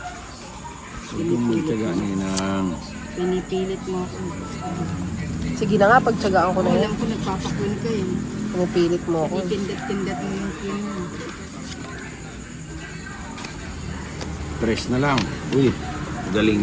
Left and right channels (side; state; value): both; identical; correlation 1.00